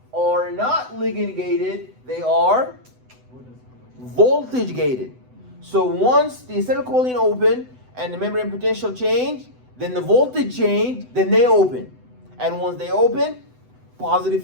are not ligand gated, they are voltage gated. So once the acetylcholine open and the membrane potential change, then the voltage change, then they open. And once they open, positive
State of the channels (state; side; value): late; left; 7.9 ms